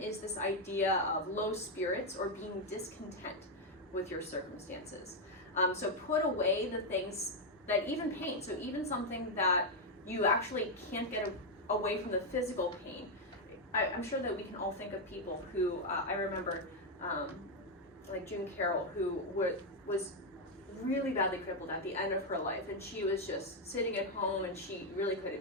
this idea of low spirits or being discontent with your circumstances. So put away the things that even pain, so even something that you actually can't get away from the physical pain. I'm sure that we can all think of people who, I remember, like June Carroll, who was really badly crippled at the end of her life, and she was just sitting at home and she really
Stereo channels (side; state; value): both; normal; correlation 0.02